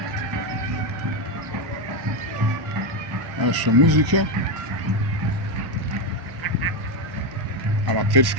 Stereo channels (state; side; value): late; left; 1.0 ms